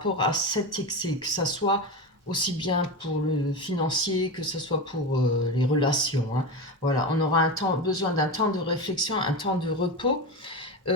à cet excès, que ça soit aussi bien pour le financier que ce soit pour les relations. Hein. Voilà, on aura besoin d'un temps de réflexion, un temps de repos,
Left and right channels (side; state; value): both; normal; correlation 0.20